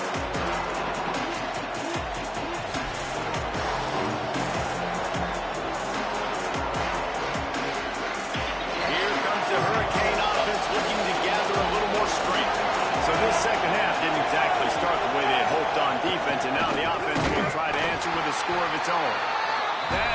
Here comes the Hurricane offense looking to gather a little more strength. So this second half didn't exactly start the way they had hoped on defense, and now the offense will try to answer with a score of its own.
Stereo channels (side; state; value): both; identical; correlation 1.00